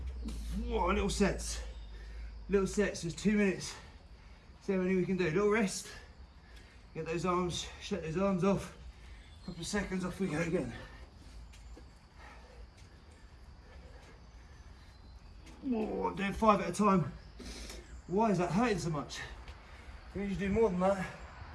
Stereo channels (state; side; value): identical; both; correlation 1.00